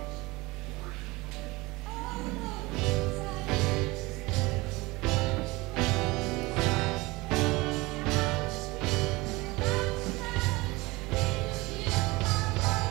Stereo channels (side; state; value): left; quieter; 22.3 dB